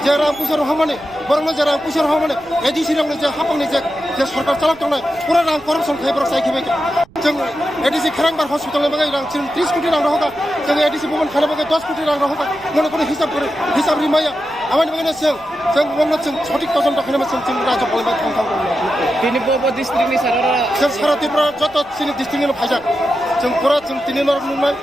जे रां पैसा रहा माने बरं जे रां पैसा रहा माने एडीसी रंग जे हापंनि जे सरकार चलाव तंनाय पूरा रां करप्शन खाई बरं साइखिबाय जों एडीसी खरांबार हस्पिटाल बागै रां 30 कोटी रां रहोगा जों एडीसी भवन खाना बागै 10 कोटी रां रहोगा मने कोनो हिसाब रिमाया আমার বাগানে जों उनाव जों सঠিक तजन खालामो जों रायजोआव थांथां তিনি বব ডিস্ট্রিক্টनि सारा जों सारा त्रिपुरा जत जोंनि डिस्ट्रिक्टनिनो फायजाक जों पुरा जों दिनै नुनाय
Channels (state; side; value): noise; right; rumble, 25 dB below the sound